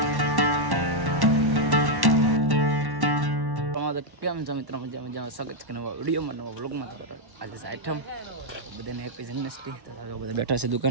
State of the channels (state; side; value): late; left; 1.1 ms